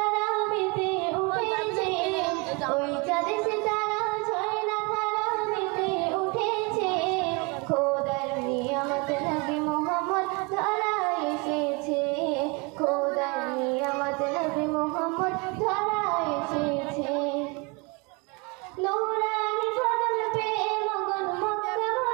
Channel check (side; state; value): left; quieter; 29.8 dB